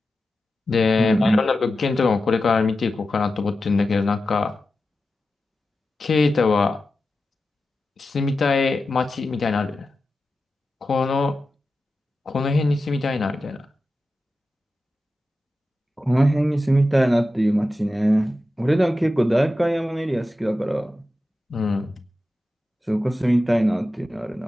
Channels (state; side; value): normal; both; correlation 0.92